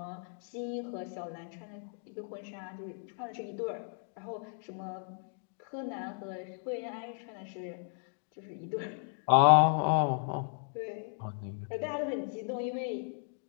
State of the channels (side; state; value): right; silent; 55 dB below the other